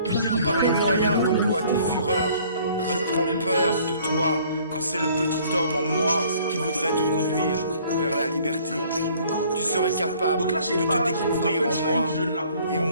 par les moyens qu'emploient tes fureurs. Je prends peur de toi quand c'est le petit homme en moi qui voudrait te conduire vers la liberté. Tu serais capable Donc là, de te découvrir en moi et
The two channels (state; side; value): inverted; both; correlation -0.57